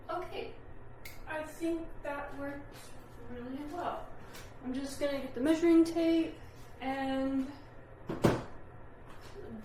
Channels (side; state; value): both; identical; correlation 1.00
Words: Okay, I think that worked really well. I'm just gonna get the measuring tape and